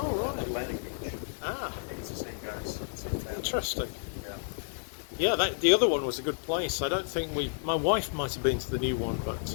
right. Atlantic Beach. ah, I think it's the same guys. Same family. interesting. Yeah. Yeah, the other one was a good place. I don't think my wife might have been to the new one, but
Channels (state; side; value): silent; right; digital silence